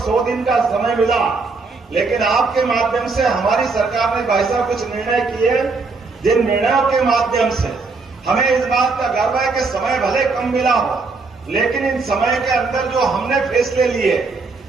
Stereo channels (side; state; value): left; quieter; 4.1 dB